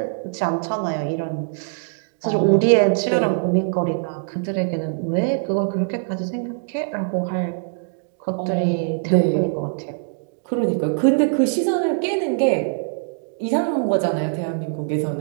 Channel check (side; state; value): left; silent; digital silence